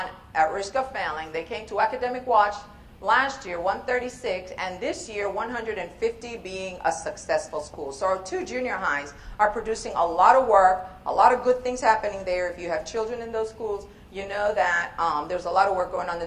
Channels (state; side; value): identical; both; correlation 1.00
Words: at risk of failing, they came to academic watch last year, 136, and this year 150, being a successful school. So our two junior highs are producing a lot of work, a lot of good things happening there. If you have children in those schools, you know that there's a lot of work going on in